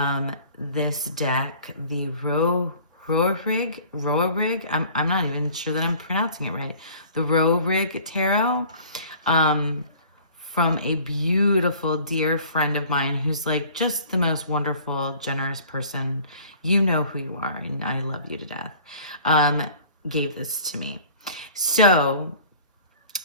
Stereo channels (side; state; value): both; inverted; correlation -0.49